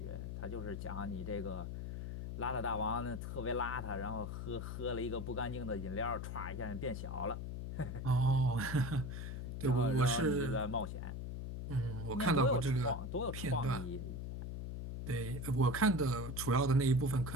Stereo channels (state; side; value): noise; left; hum, 5 dB below the sound